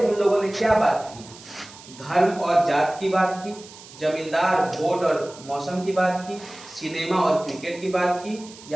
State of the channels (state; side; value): noise; right; hiss, 19 dB below the sound